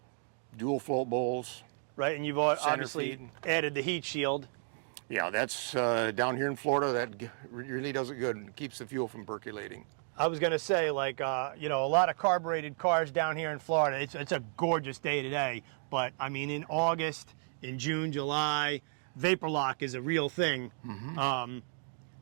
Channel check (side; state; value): left; silent; 56 dB below the other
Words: Dual float bowls. Right, and you've obviously feed. added the heat shield. Yeah, that's down here in Florida. That really does it good and keeps the fuel from percolating. I was going to say, like, you know, a lot of carbureted cars down here in Florida. It's a gorgeous day today. But, I mean, in August, in June, July, vapor lock is a real thing.